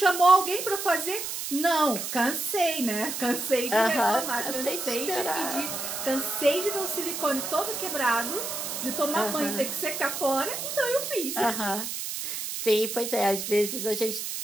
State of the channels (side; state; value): right; noise; hiss, 5 dB below the sound